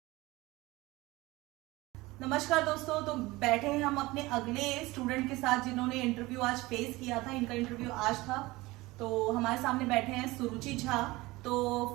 नमस्कार दोस्तों, तो बैठे हैं हम अपने अगले स्टूडेंट के साथ जिन्होंने इंटरव्यू आज फेस किया था। इनका इंटरव्यू आज था, तो हमारे सामने बैठे हैं सुरुचि झा। तो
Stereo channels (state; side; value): quieter; left; 20.6 dB